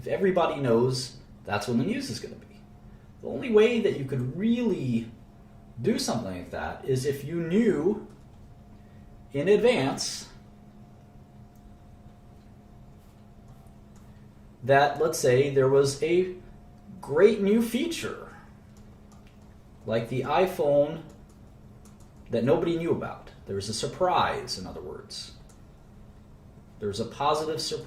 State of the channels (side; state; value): both; identical; correlation 1.00